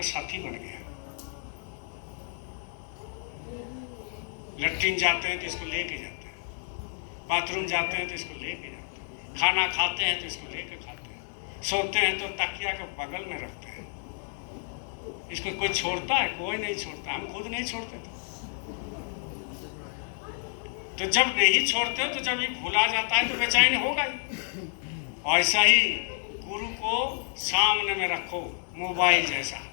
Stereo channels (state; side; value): silent; right; 58 dB below the other